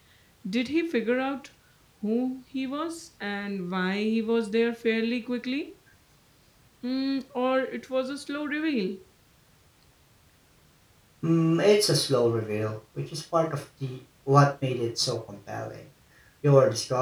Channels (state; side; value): identical; both; correlation 1.00